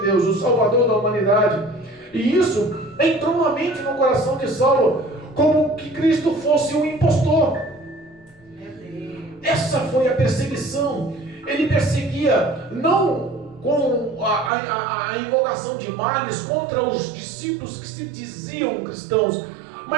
Deus, o Salvador da humanidade. E isso entrou na mente, no coração de Saulo, como que Cristo fosse um impostor. Essa foi a perseguição. Ele perseguia não com a invocação de males contra os discípulos que se diziam cristãos,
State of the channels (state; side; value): drops out; left; at 14.5 s